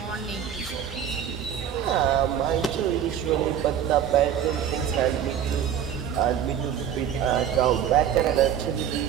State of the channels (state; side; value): quieter; left; 9.2 dB